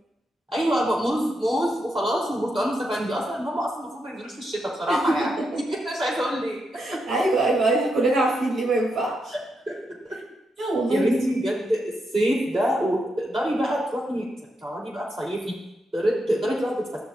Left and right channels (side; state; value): both; normal; correlation 0.83